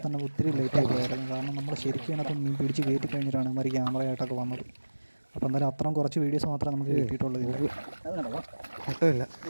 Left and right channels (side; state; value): both; inverted; correlation -1.00